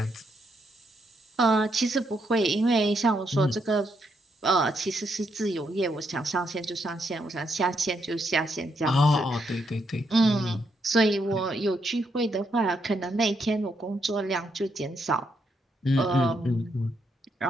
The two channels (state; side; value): normal; both; correlation 0.78